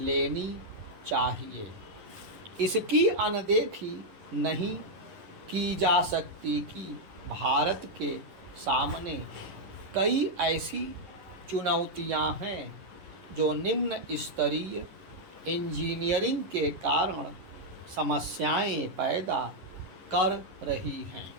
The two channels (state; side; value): late; left; 11 ms